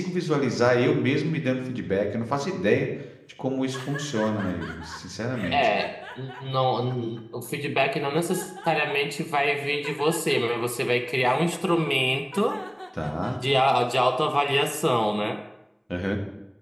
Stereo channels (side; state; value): both; identical; correlation 1.00